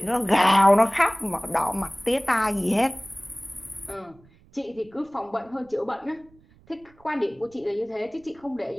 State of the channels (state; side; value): noise; right; rumble, 29 dB below the sound